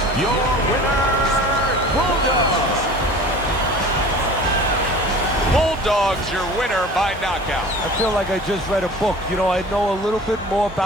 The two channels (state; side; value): normal; both; correlation 0.41